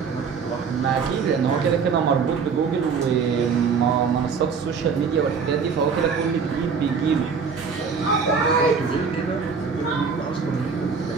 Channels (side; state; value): left; quieter; 5.7 dB